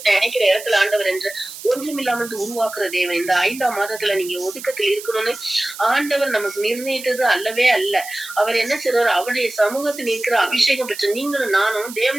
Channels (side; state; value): right; noise; hiss, 13 dB below the sound